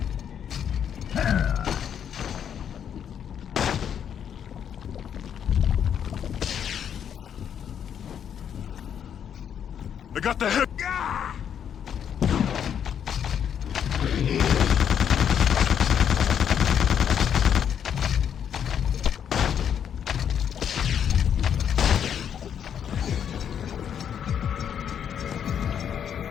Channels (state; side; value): quieter; right; 8.6 dB